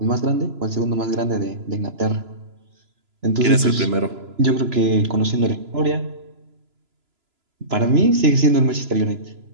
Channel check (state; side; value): late; left; 3.0 ms